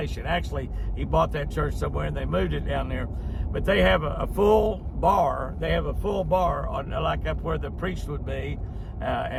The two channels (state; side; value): identical; both; correlation 1.00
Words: Actually, he bought that church somewhere and they moved it down there. But they have a full bar. They have a full bar on, like up where the priest would be,